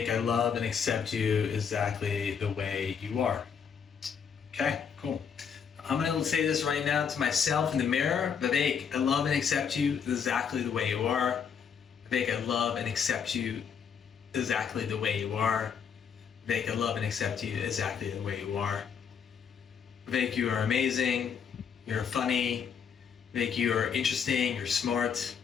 I love and accept you exactly the way you are. Okay, cool. I'm going to say this right now to myself in the mirror. Vivek, I love and accept you exactly the way you are. Vivek, I love and accept you exactly the way you are. Vivek, I love and accept you exactly the way you are. Vivek, you are amazing. You're funny. Vivek, you are interesting. You're smart.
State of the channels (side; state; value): right; quieter; 7.0 dB